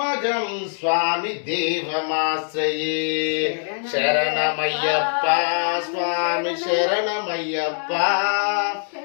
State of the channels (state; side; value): silent; right; digital silence